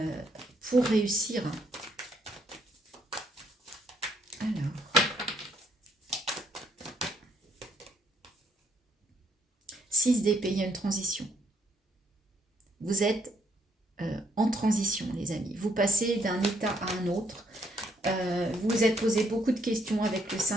pour réussir. Alors, 6 d'épée, il y a une transition. Vous êtes en transition, les amis. Vous passez d'un état à un autre. Vous vous êtes posé beaucoup de questions avec le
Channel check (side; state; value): both; normal; correlation 0.71